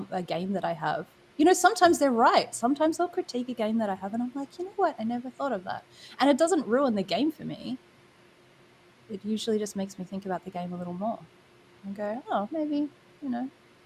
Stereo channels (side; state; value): both; identical; correlation 1.00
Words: a game that I have, you know, sometimes they're right. Sometimes they'll critique a game that I have and I'm like, you know what? I never thought of that. And it doesn't ruin the game for me. It usually just makes me think about the game a little more and go, oh, maybe, you know,